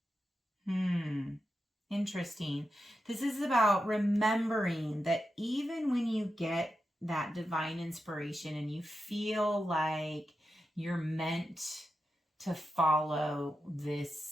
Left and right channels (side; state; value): both; normal; correlation 0.89